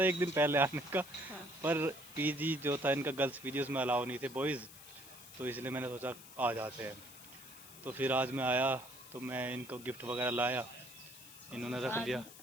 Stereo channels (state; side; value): noise; left; hiss, 17 dB below the sound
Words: एक दिन पहले आने का, पर पीजी जो था इनका, गर्ल्स पीजी, उसमें अलाउ नहीं थे बॉयज़, तो इसलिए मैंने सोचा आ जाते हैं। तो फिर आज मैं आया, तो मैं इनको गिफ्ट वगैरह लाया, इन्होंने रख